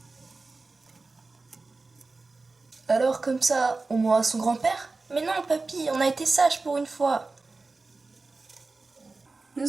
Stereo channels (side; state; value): left; quieter; 3.7 dB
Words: Alors comme ça, on mourra son grand-père? Mais non, papy, on a été sages pour une fois.